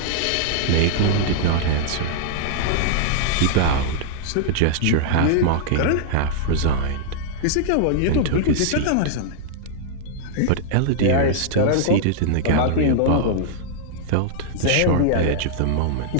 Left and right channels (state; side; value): different; both; correlation -0.01